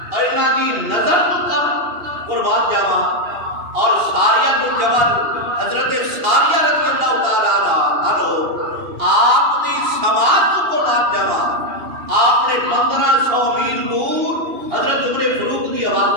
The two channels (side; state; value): left; late; 2.8 ms